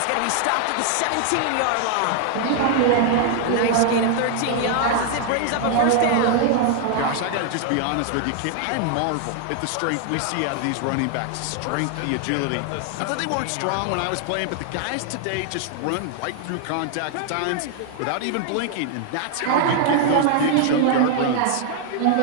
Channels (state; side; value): different; both; correlation 0.00